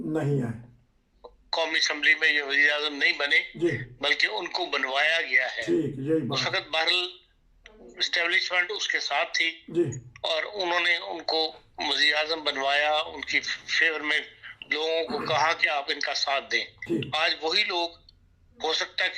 نہیں آئے، قومی اسمبلی میں یہ وزیر اعظم نہیں بنے، جی بلکہ ان کو بنوایا گیا ہے. ٹھیک، یہی اس بات. وقت بہرحال اسٹیبلشمنٹ اس کے ساتھ تھی جی اور انہوں نے ان کو وزیر اعظم بنوایا، ان کی فیور میں لوگوں کو کہا کہ آپ ان کا ساتھ دیں. ٹھیک، آج وہی لوگ ہو سکتا ہے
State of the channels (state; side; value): identical; both; correlation 1.00